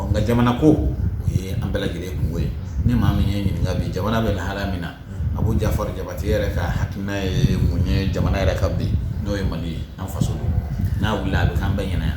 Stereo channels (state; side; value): identical; both; correlation 1.00